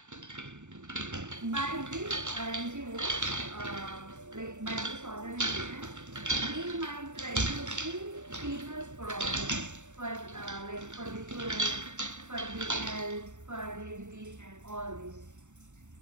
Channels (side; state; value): left; late; 0.84 ms